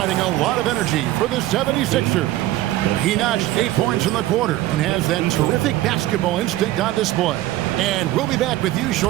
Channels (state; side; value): quieter; left; 15.5 dB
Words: a lot of energy for the 76ers. He notched 8 points in the quarter and has that terrific basketball instinct on display. And we'll be back with you